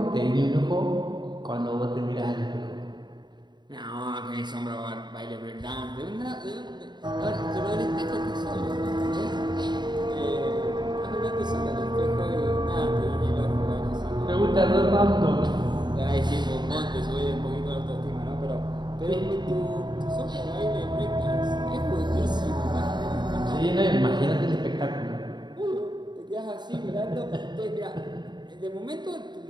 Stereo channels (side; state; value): left; late; 0.21 ms